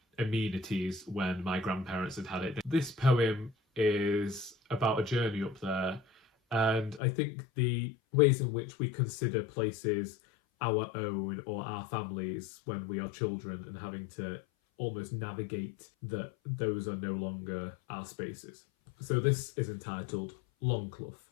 amenities when my grandparents had it. This poem is about a journey up there, and I think the ways in which we consider places our own or our families when we are children and having to almost navigate that those are no longer our spaces. So this is entitled Longclough.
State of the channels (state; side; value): drops out; right; at 7.0 s